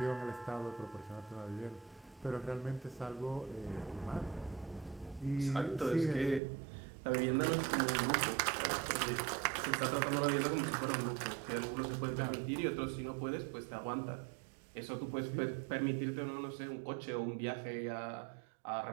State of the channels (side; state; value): left; drops out; at 6.4 s